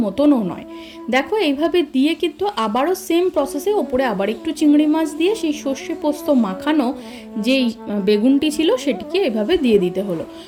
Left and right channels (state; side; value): identical; both; correlation 1.00